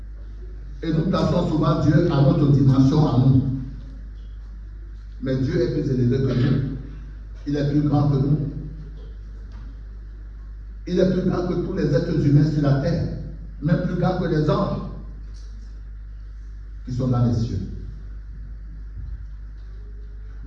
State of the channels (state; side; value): identical; both; correlation 1.00